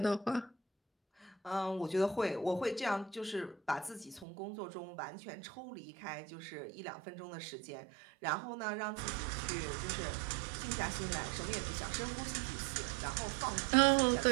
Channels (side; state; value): left; drops out; at 4.2 s